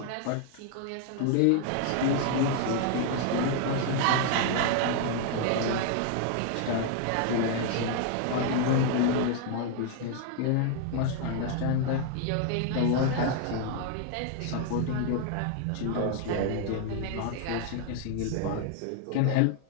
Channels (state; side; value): different; both; correlation 0.00